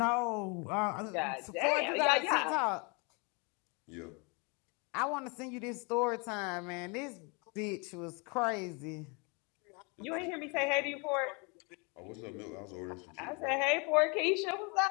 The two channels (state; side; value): quieter; right; 31.6 dB